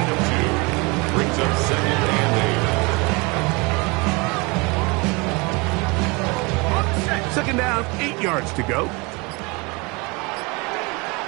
of 2. Brings up second and 8. Second down, 8 yards to go.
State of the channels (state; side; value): quieter; left; 27.5 dB